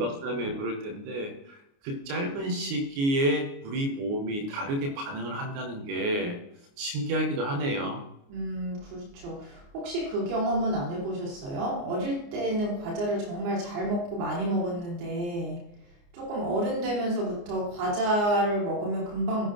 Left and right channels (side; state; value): left; late; 29 ms